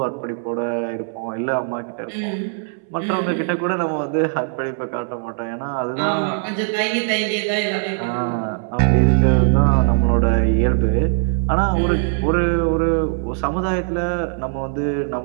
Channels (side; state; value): left; silent; 64 dB below the other